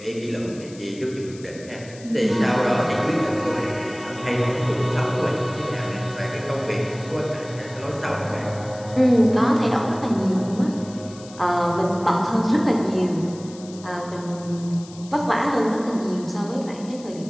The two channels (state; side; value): noise; left; hiss, 20 dB below the sound